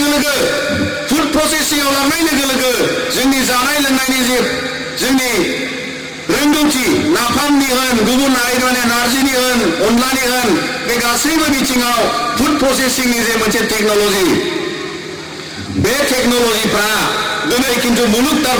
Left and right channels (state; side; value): identical; both; correlation 1.00